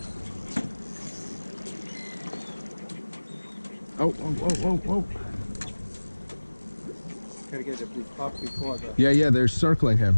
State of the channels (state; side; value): inverted; both; correlation -1.00